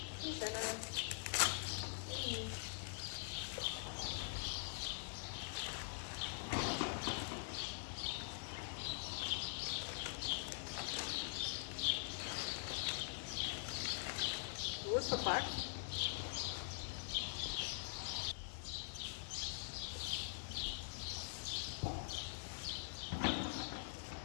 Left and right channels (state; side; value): silent; right; digital silence